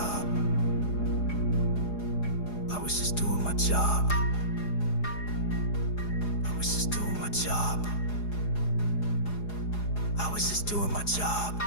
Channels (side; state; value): right; late; 4.8 ms